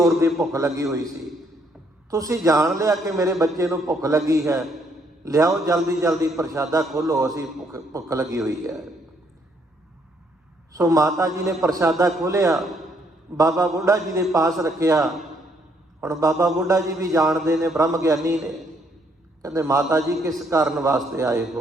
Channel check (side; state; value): both; normal; correlation 0.70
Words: ਦੀ ਭੁੱਖ ਲੱਗੀ ਹੋਈ ਸੀ। ਤੁਸੀਂ ਜਾਣ ਲਿਆ ਕਿ ਮੇਰੇ ਬੱਚੇ ਨੂੰ ਭੁੱਖ ਲੱਗੀ ਹੈ, ਲਿਆਓ ਜਲਦੀ ਜਲਦੀ ਪ੍ਰਸ਼ਾਦਾ ਖੋਲ੍ਹੋ, ਅਸੀਂ ਭੁੱਖ ਲੱਗੀ ਹੋਈ ਹੈ। ਸੋ ਮਾਤਾ ਜੀ ਨੇ ਪ੍ਰਸ਼ਾਦਾ ਖੋਲ੍ਹਿਆ, ਬਾਬਾ ਬੁੱਢਾ ਜੀ ਦੇ ਪਾਸ ਰੱਖਿਆ। ਹੁਣ ਬਾਬਾ ਬੁੱਢਾ ਜੀ ਵੀ ਜਾਣਦੇ ਨੇ, ਬ੍ਰਹਮ ਗਿਆਨੀ ਨੇ। ਕਹਿੰਦੇ ਮਾਤਾ ਜੀ ਕਿਸ ਕਾਰਨ ਵਾਸਤੇ ਆਏ